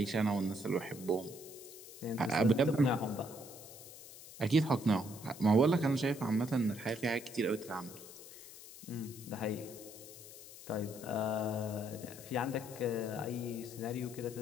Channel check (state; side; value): noise; left; hiss, 16 dB below the sound